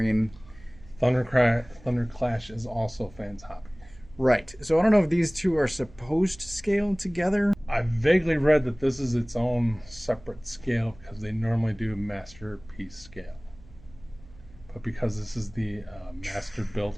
Thunderclash is also Fans Hobby. Right. So I don't know if these two are supposed to scale together. I vaguely read that this is its own separate scale because they normally do a masterpiece scale. But because this is the Master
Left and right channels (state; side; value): noise; right; hum, 22 dB below the sound